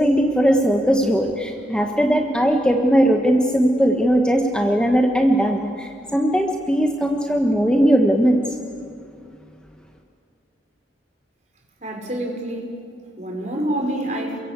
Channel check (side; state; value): both; normal; correlation 0.84